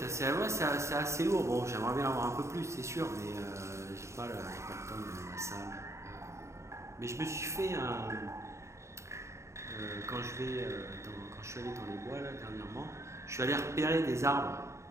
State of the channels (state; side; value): late; left; 0.14 ms